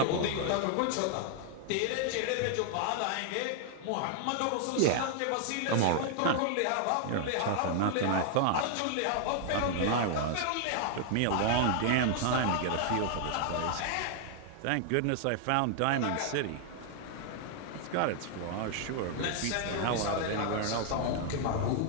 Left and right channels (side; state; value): both; different; correlation 0.00